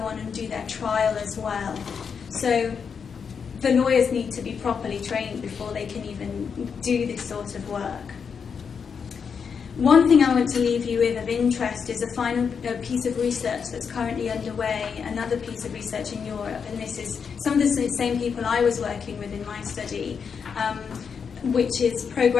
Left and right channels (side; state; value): right; quieter; 6.4 dB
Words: on and do their trial as well. So the lawyers need to be properly trained before they can even do this sort of work. One thing I want to leave you with of interest is a final piece of research that's currently underway, another piece of research in Europe, and this is some of the same people I was working with in my study, which is